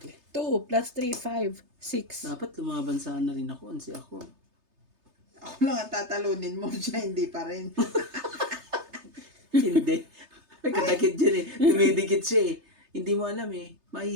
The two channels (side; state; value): left; late; 3.3 ms